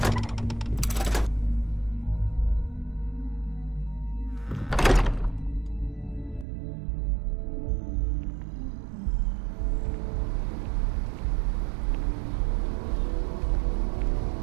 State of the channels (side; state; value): left; drops out; at 6.5 s